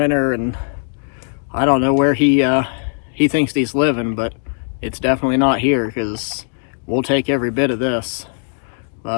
and I don't know where he thinks he's living, but it's definitely not here, because we'll take every bit of this. But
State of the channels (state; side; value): silent; right; 67 dB below the other